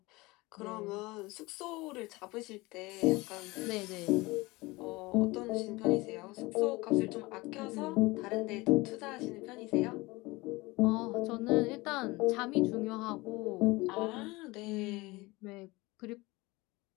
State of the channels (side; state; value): right; quieter; 22.2 dB